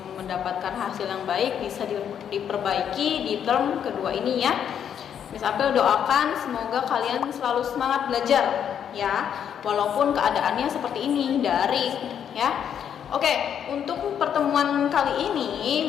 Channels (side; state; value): right; quieter; 8.7 dB